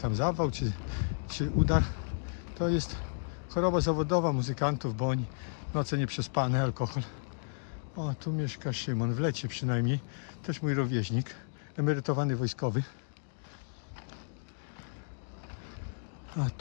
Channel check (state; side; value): silent; right; digital silence